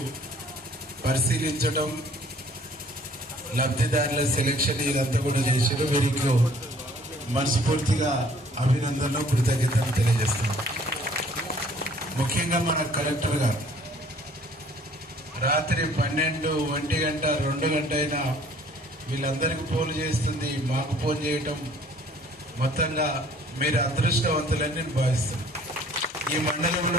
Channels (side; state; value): both; normal; correlation 0.56